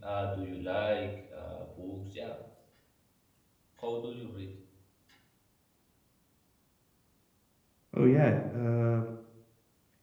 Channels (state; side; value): identical; both; correlation 1.00